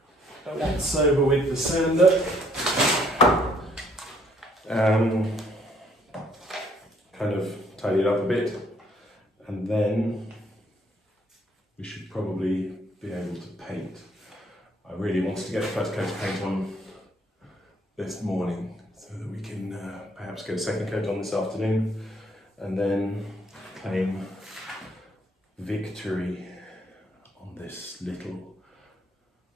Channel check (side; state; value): both; normal; correlation 0.65